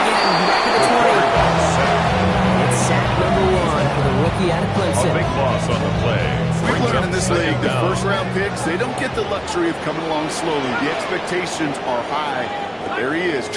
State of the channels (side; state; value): both; identical; correlation 1.00